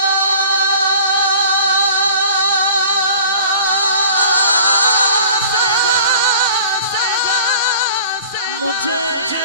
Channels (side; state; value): both; inverted; correlation -0.46